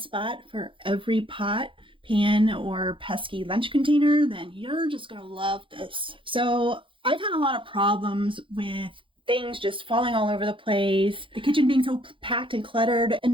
for every pot, pan, or pesky lunch container, then you're just going to love this. So I've had a lot of problems with things just falling all over the place, the kitchen being so packed and cluttered, and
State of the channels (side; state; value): left; late; 0.25 ms